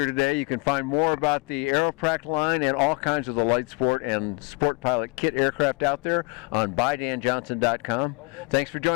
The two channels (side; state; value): right; quieter; 29.6 dB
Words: today. You can find more about the Aeroprakt line and all kinds of the light sport and sport pilot kit aircraft out there on buydanjohnson.com. Thanks for